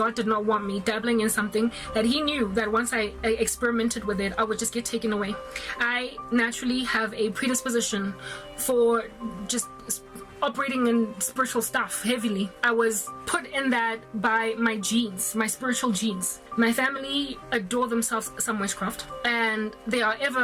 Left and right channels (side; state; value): both; identical; correlation 1.00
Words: did not want me dabbling in something that He knew that once I experimented with it, I would just get taken away. I naturally have a predisposition for just operating in spiritual stuff heavily. I was put in that by my genes, my spiritual genes. My family adore themselves some witchcraft, and they are